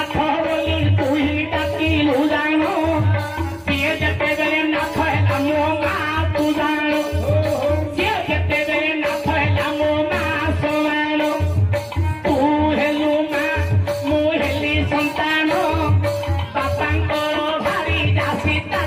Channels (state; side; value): identical; both; correlation 1.00